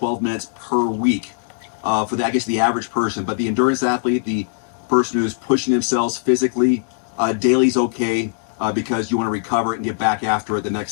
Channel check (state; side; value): silent; right; 64 dB below the other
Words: minutes per week for the, I guess, the average person. But the endurance athlete, the person who's pushing themselves physically, daily is okay because you want to recover and get back after it the